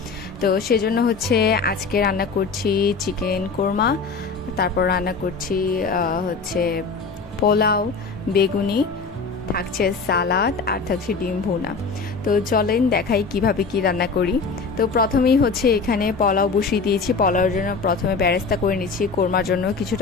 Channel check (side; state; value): right; quieter; 4.6 dB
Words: তো সেজন্য হচ্ছে আজকে রান্না করছি চিকেন কোরমা, তারপর রান্না করছি হচ্ছে পোলাও, বেগুনি, থাকছে সালাদ আর থাকছে ডিম ভুনা। তো চলেন দেখাই কিভাবে কি রান্না করি। তো প্রথমেই হচ্ছে এখানে পোলাও বসিয়ে দিয়েছি। পোলাওর জন্য প্রথমে বেরেস্তা করে নিচ্ছি, কোরমার জন্য